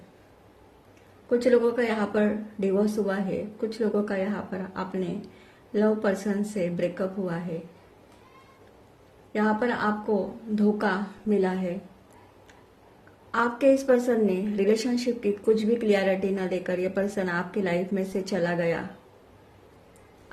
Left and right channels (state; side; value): identical; both; correlation 1.00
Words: कुछ लोगों का यहाँ पर डिवोर्स हुआ है, कुछ लोगों का यहाँ पर अपने लव पर्सन से ब्रेकअप हुआ है। यहाँ पर आपको धोखा मिला है। आपके इस पर्सन ने रिलेशनशिप की कुछ भी क्लियरिटी न देकर यह पर्सन आपकी लाइफ में से चला गया।